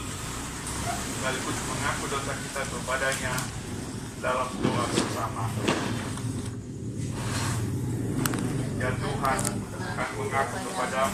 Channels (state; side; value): identical; both; correlation 1.00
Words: sekaligus mengaku dosa kita kepadanya dalam doa bersama. Ya Tuhan, kami mengaku